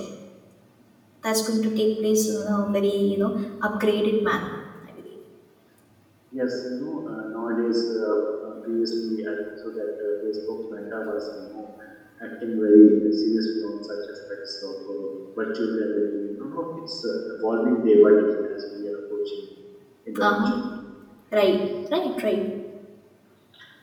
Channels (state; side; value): identical; both; correlation 1.00